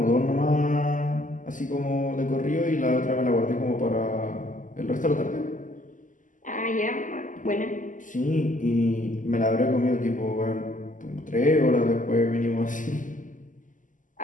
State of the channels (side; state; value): right; late; 0.38 ms